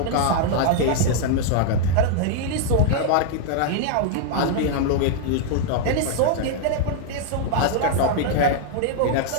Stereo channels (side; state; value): both; different; correlation 0.00